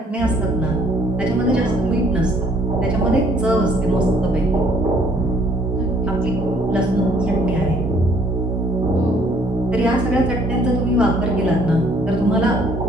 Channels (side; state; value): both; normal; correlation 0.62